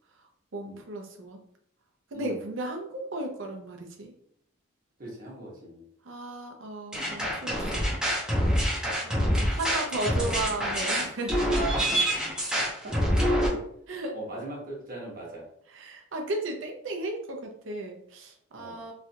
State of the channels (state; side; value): normal; both; correlation 0.55